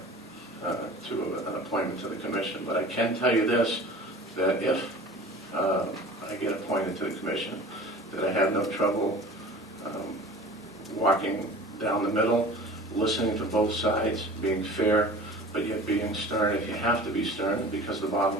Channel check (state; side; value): normal; both; correlation 0.41